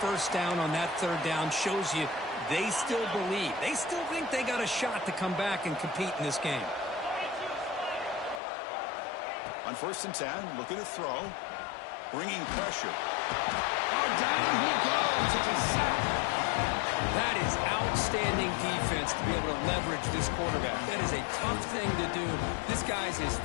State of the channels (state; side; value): drops out; right; at 8.4 s